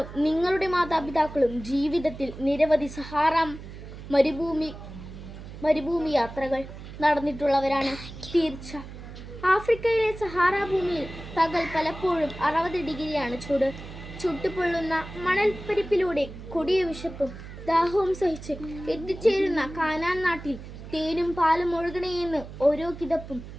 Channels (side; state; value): right; noise; hum, 13 dB below the sound